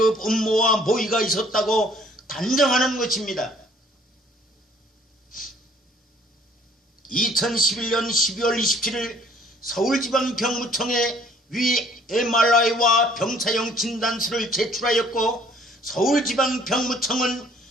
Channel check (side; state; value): both; normal; correlation 0.58